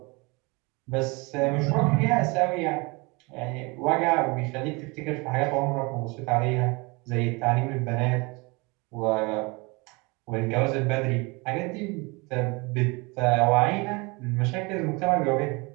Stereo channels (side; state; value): left; quieter; 27.1 dB